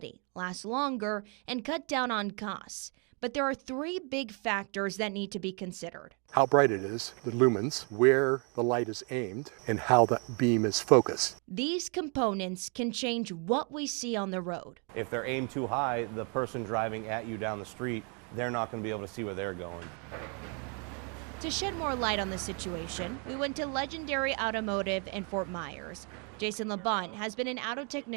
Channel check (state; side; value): quieter; left; 36.7 dB